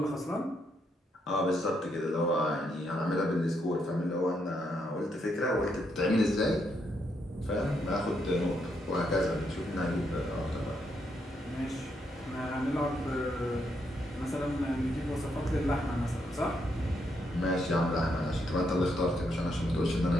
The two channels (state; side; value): normal; both; correlation 0.78